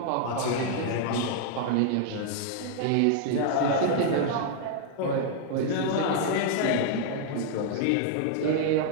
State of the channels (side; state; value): both; different; correlation 0.00